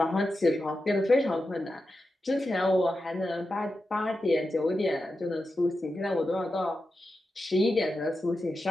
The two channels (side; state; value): both; normal; correlation 0.90